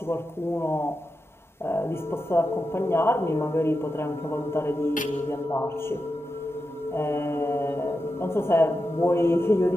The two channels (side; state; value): both; normal; correlation 0.89